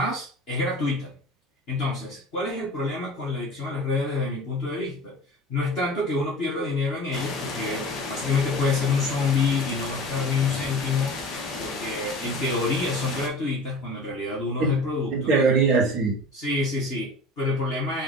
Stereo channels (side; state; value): both; normal; correlation 0.37